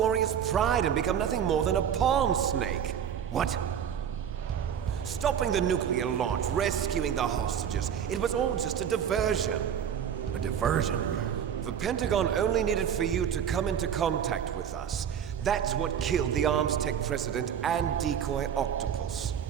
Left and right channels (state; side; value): quieter; left; 8.5 dB